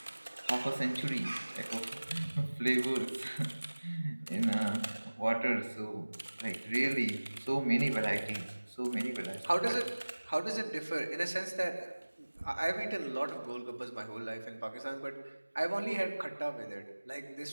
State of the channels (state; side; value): inverted; both; correlation -1.00